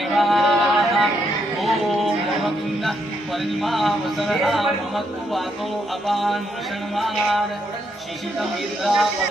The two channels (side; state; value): both; normal; correlation 0.77